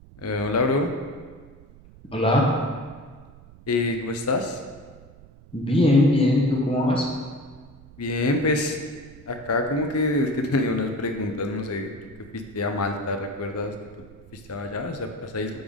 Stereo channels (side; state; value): right; noise; rumble, 22 dB below the sound